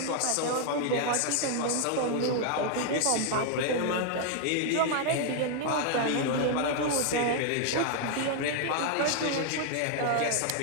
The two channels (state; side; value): different; both; correlation 0.00